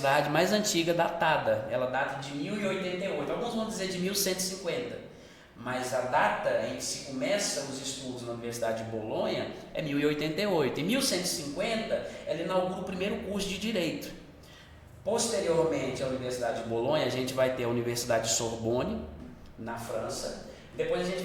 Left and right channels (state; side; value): identical; both; correlation 1.00